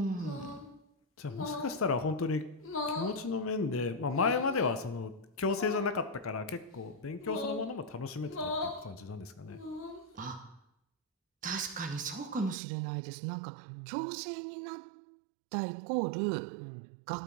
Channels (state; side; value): drops out; left; at 12.6 s